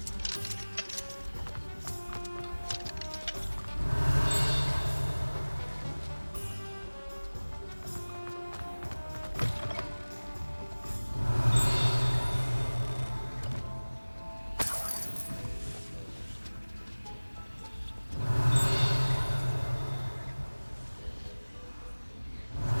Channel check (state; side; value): inverted; both; correlation -1.00